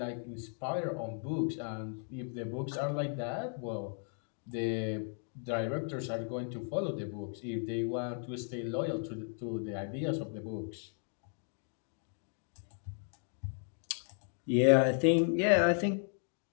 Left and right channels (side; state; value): right; silent; 54 dB below the other